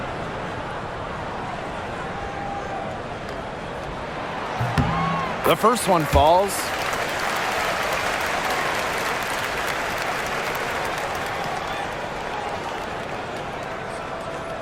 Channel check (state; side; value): identical; both; correlation 1.00